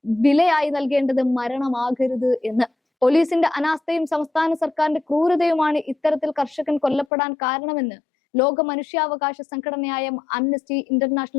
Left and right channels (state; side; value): drops out; right; at 7.1 s